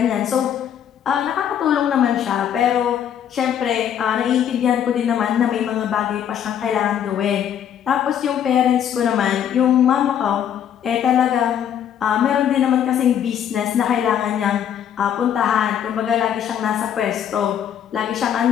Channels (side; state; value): right; quieter; 9.4 dB